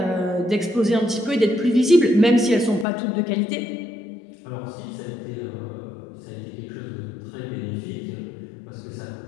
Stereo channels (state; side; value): drops out; right; at 2.9 s